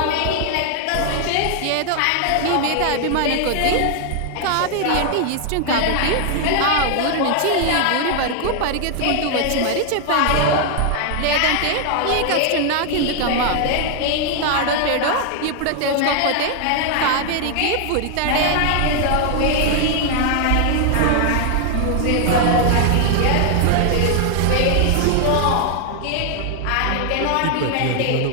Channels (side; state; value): both; different; correlation 0.00